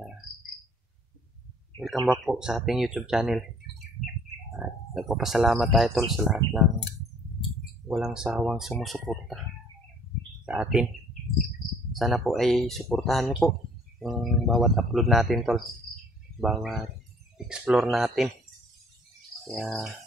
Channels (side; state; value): both; normal; correlation 0.56